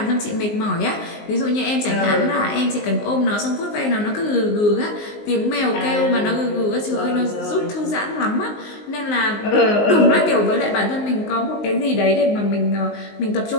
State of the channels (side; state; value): right; late; 19 ms